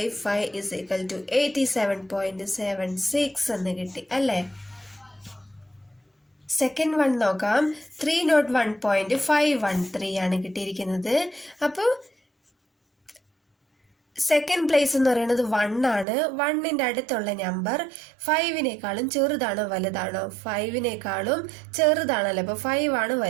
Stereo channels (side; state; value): left; drops out; at 16.1 s